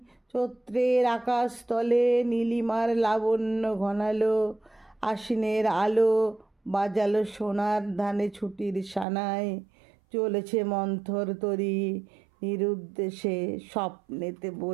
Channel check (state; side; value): drops out; left; at 9.1 s